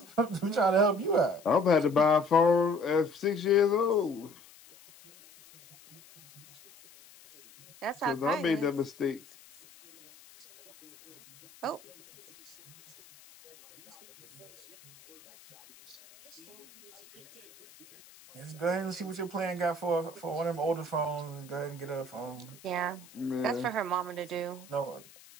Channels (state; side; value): noise; left; hiss, 23 dB below the sound